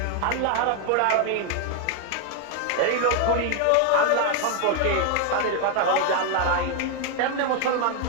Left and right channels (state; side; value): different; both; correlation 0.01